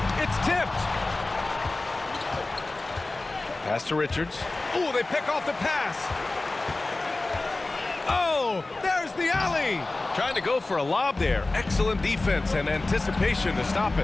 It's tipped. Pass to Richards. Oh, they pick off the pass. Oh, there's the alley. Trying to go for a lob there. Excellent defense and anticipation to stop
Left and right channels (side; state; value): right; quieter; 3.1 dB